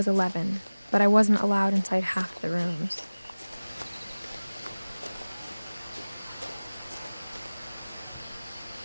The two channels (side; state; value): both; inverted; correlation -1.00